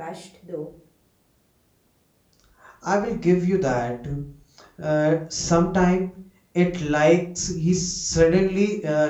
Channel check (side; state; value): both; identical; correlation 1.00